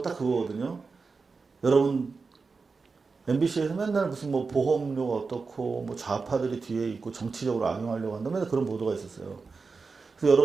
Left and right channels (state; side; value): quieter; left; 4.5 dB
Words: 딱 그거거든요. 여러분, MBC에서 맨날 무슨 뭐 보험료가 어떻고 뭐 좌파들이 뒤에 있고 정치적으로 악용하려고 한다. 맨날 그런 보도가 있었어요. 그래서